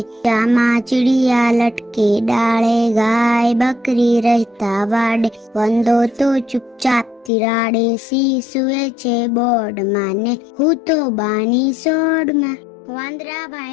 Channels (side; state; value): right; drops out; at 7.3 s